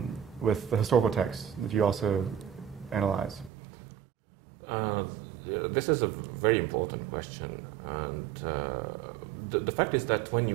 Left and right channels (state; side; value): drops out; left; at 3.5 s